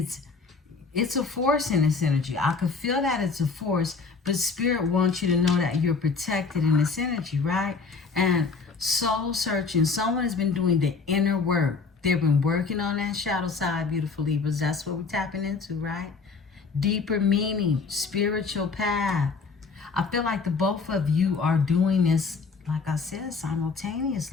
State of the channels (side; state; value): right; quieter; 4.6 dB